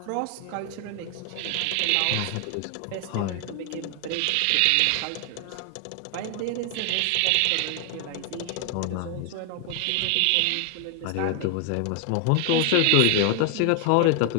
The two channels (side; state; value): both; different; correlation 0.00